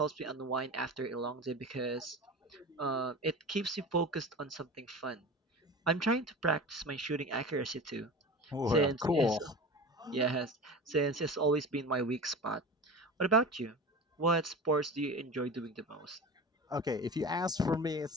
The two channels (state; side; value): normal; both; correlation 0.32